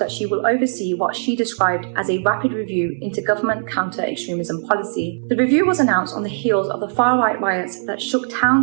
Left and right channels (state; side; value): silent; left; 63 dB below the other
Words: she will oversee what she described as a rapid review into government counter-extremism policy. The review was announced on the heels of the far-right riots that shook